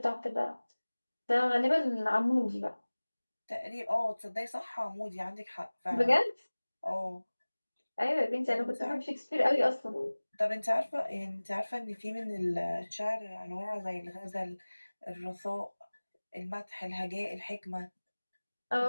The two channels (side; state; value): both; inverted; correlation -1.00